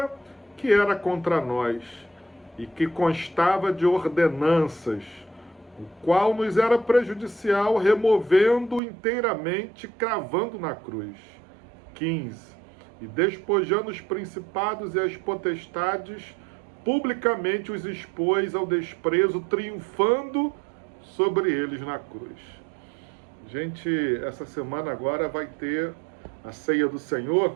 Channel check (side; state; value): left; drops out; at 8.8 s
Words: que era contra nós e que constava de ordenanças, o qual nos era prejudicial, removendo inteiramente, cravando na cruz. 15. E despojando os principados e as potestades, publicamente os expôs ao desprezo, triunfando sobre eles na cruz. Gente, essa semana agora vai ter a ceia do